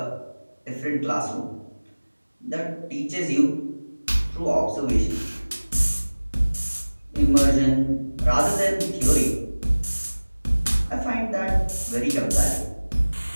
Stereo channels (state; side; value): inverted; both; correlation -1.00